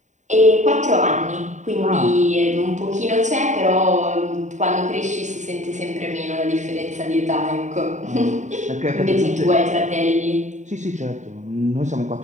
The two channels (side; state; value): left; late; 0.35 ms